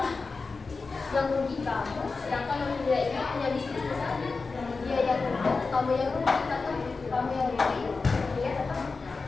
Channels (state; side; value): quieter; right; 4.2 dB